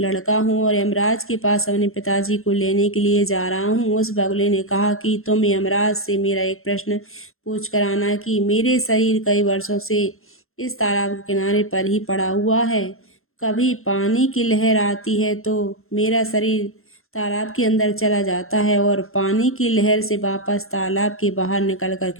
हूँ और यमराज के पास अपने पिताजी को लेने के लिए जा रहा हूँ। उस बगुले ने कहा कि तुम यमराज से मेरा एक प्रश्न पूछ कर आना कि मेरे शरीर कई वर्षों से इस तालाब के किनारे पर ही पड़ा हुआ है। कभी पानी की लहर आती है तो मेरा शरीर तालाब के अंदर चला जाता है और पानी की लहर से वापस तालाब के बाहर निकलकर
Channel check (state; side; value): late; right; 0.61 ms